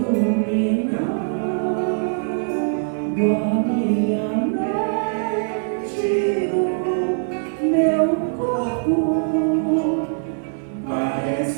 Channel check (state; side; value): silent; left; digital silence